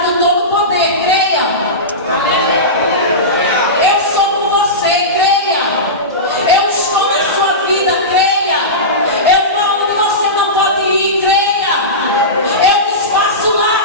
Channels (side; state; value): both; normal; correlation -0.18